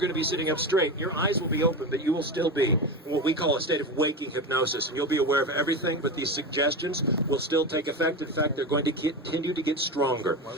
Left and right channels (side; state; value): both; normal; correlation 0.22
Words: going to be sitting up straight. Your eyes will be open, but you will still be in what we call a state of waking hypnosis, and you'll be aware of everything, but these suggestions will still take effect. In fact, they're going to continue to get stronger.